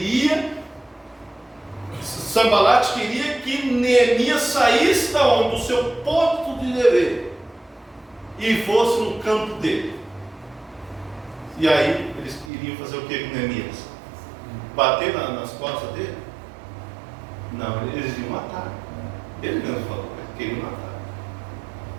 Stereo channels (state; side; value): drops out; left; at 12.5 s